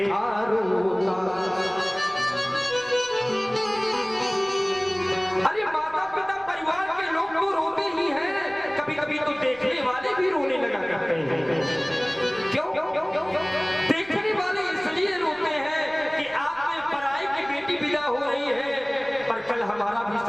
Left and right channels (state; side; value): noise; right; rumble, 25 dB below the sound